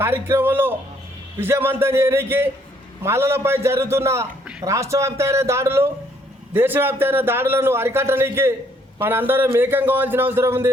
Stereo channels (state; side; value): normal; both; correlation 0.66